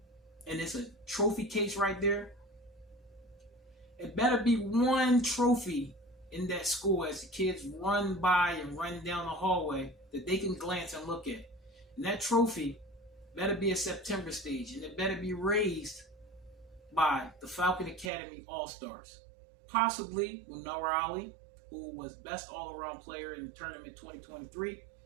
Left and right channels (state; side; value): drops out; left; at 18.1 s